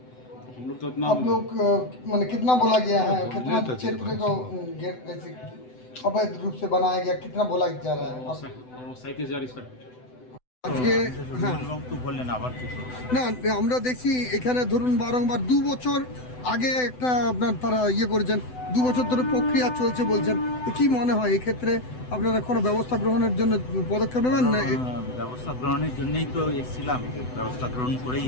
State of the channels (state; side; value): late; right; 7.9 ms